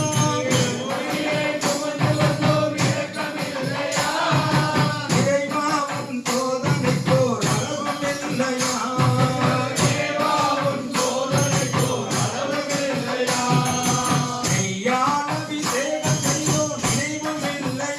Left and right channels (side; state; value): both; identical; correlation 1.00